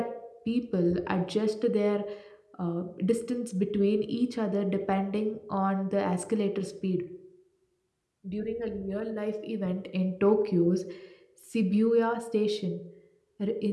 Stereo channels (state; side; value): identical; both; correlation 1.00